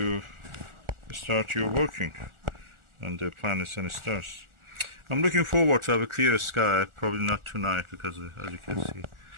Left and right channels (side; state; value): left; late; 1.4 ms